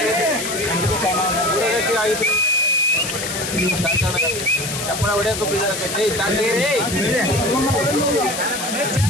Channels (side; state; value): left; noise; hiss, 5 dB below the sound